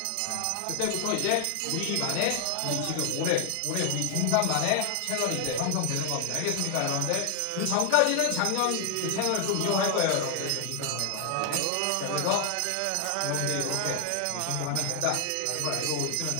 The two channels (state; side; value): different; both; correlation 0.00